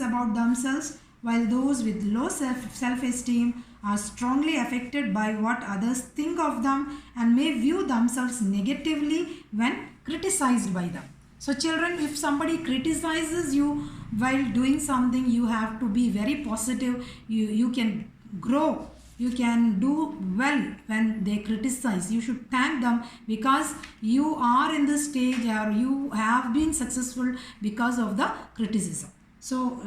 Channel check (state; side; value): identical; both; correlation 1.00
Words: about themselves, while those with low self-esteem are strongly affected by what others think of them and may view themselves negatively when criticized by them. So children, if somebody criticizes you while doing something, you have to be very positive. You can grow. You can do well when they criticize. You should thank them because you are in this stage or you have been successful because of the criticism. So